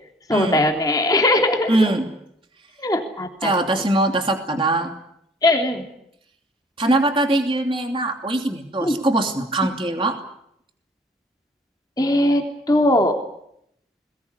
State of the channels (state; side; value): normal; both; correlation 0.55